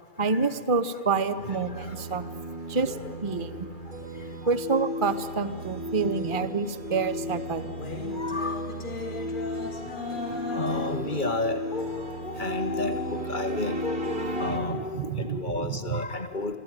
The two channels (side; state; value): right; late; 2.4 ms